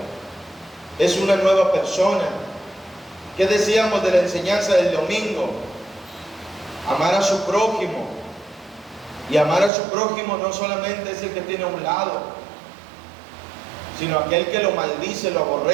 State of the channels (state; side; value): drops out; left; at 9.7 s